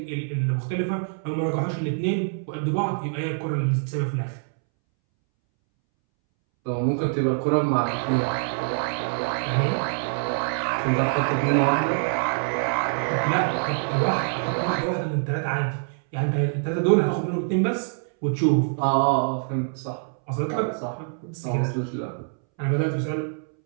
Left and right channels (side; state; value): left; silent; 62 dB below the other